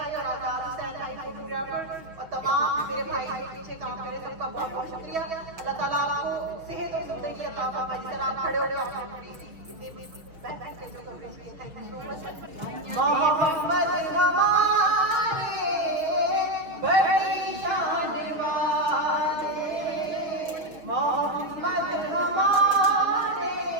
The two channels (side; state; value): left; late; 6.3 ms